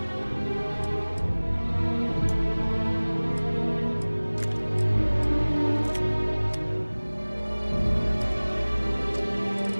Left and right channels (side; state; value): both; inverted; correlation -1.00